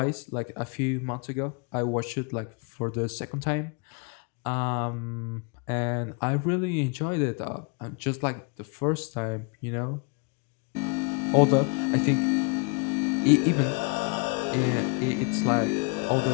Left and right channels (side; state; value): right; quieter; 33.4 dB